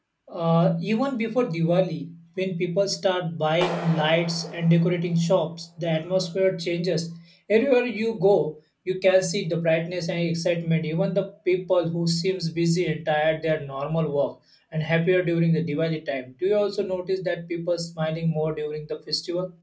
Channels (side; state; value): both; identical; correlation 1.00